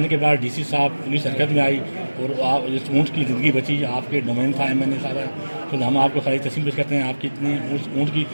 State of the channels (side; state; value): both; inverted; correlation -1.00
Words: के बाद डीसी साहब पुलिस हरकत में आई और आप इस ऊँट की ज़िंदगी बची, आपके डोमेन था मैंने सारा, तो हम आपको सारी तस्वीर पेश करते हैं। आपकी इतनी उस ऊँट की